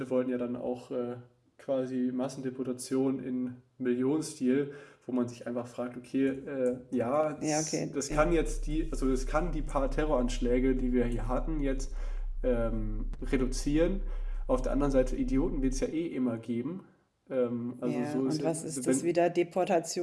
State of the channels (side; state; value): both; identical; correlation 1.00